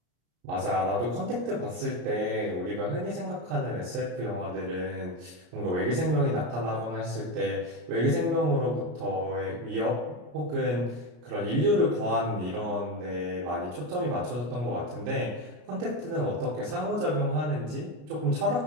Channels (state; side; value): late; left; 33 ms